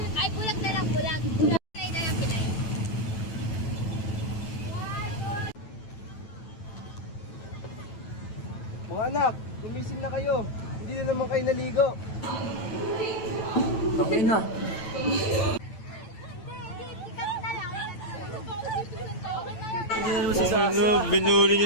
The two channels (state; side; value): late; right; 9.1 ms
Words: Ay, bulag na lang, bulag. Pinay na lang, pinay. Mga anak, gumising na kayo. Hindi na naman kayo naligo. Tangin na. Ano, binuli